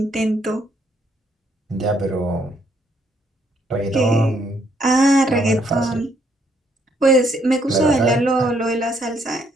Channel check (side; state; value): both; normal; correlation 0.70